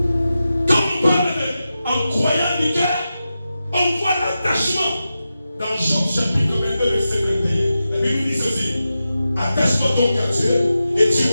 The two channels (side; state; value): both; inverted; correlation -0.92